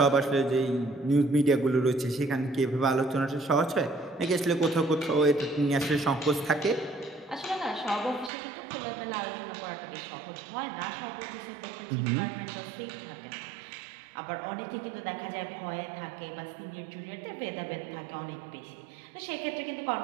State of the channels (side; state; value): left; drops out; at 8.3 s